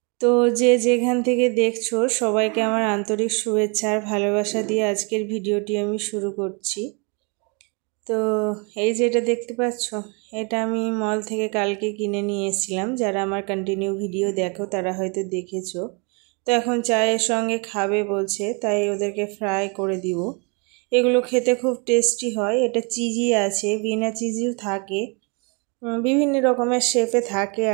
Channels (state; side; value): quieter; left; 33.4 dB